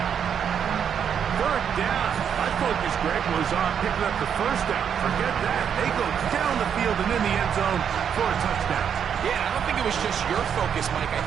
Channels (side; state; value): left; quieter; 8.0 dB